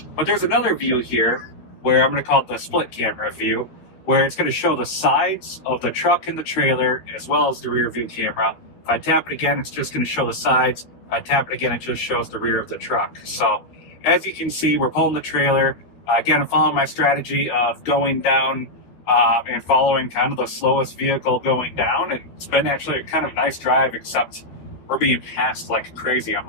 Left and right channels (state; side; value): late; right; 12 ms